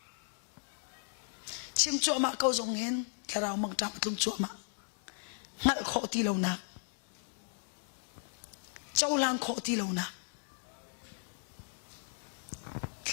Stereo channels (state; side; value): silent; right; digital silence